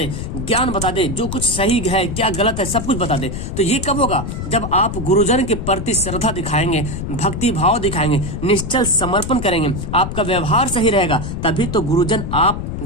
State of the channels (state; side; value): noise; left; rumble, 5 dB below the sound